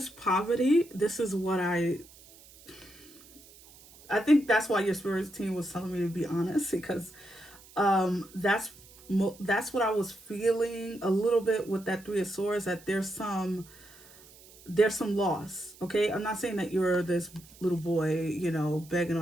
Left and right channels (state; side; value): noise; right; hiss, 23 dB below the sound